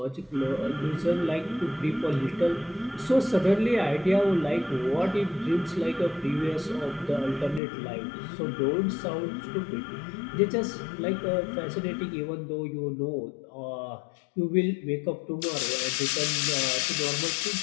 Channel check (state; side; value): drops out; right; at 7.6 s